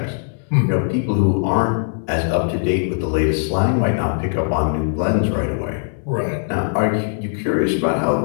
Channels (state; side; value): silent; right; digital silence